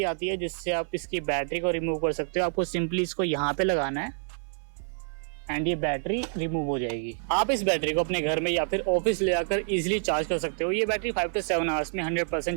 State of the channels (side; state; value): left; silent; 60 dB below the other